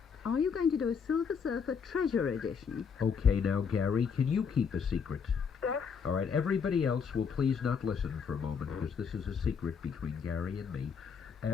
Are you going to do a Silver Surfer Treasure Edition? Okay, now, Gary, can you keep a secret? Yes? All right, everybody else will please not listen for a moment because this is a secret between Gary and me.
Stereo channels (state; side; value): quieter; right; 6.3 dB